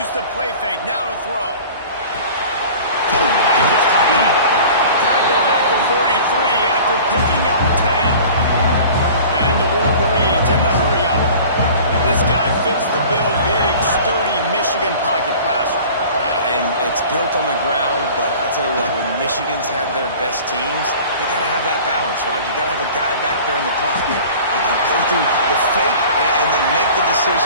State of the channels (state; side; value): inverted; both; correlation -0.43